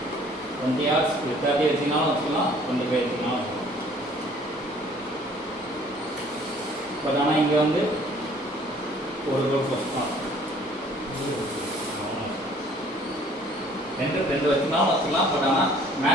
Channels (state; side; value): normal; both; correlation 0.56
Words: 20 yards 30 வச்சுனாலும் வச்சுக்கலாம், 25 வச்சுனாலும் வச்சுக்கலாம். பட் ஆனால் இங்கே வந்து ஒரு கோல் போஸ்ட் தான். ரெண்டு வச்சுனாலும் வச்சுக்கலாம். பட் ஆனால்